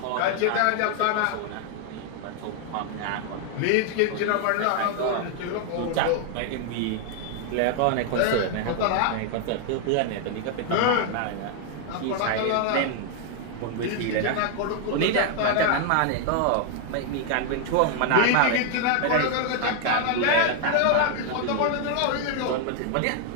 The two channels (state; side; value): different; both; correlation 0.00